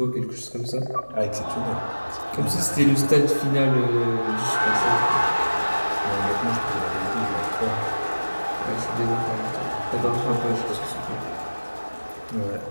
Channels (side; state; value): both; inverted; correlation -1.00